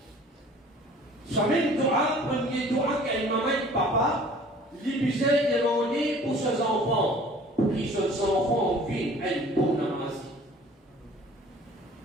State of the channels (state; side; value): normal; both; correlation 0.49